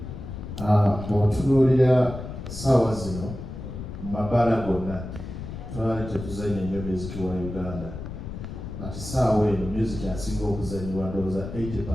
bw'otunuulira ssaawa zino mu mabaala gonna twali tetuzanya nnyo music wa Uganda ati ssaawa eno music asinga okuzanyibwa ndowooza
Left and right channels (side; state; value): left; noise; rumble, 9 dB below the sound